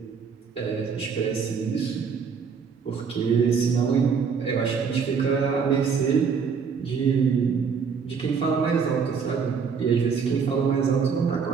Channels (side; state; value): left; quieter; 6.0 dB